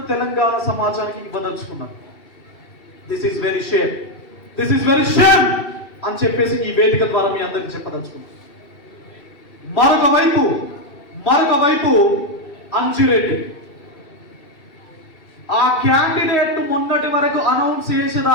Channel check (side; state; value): right; late; 2.7 ms